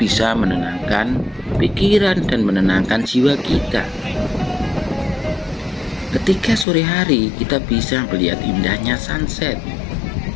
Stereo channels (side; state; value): right; drops out; at 6.7 s